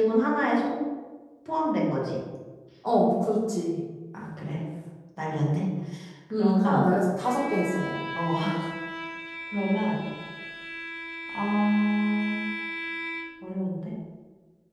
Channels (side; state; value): both; identical; correlation 1.00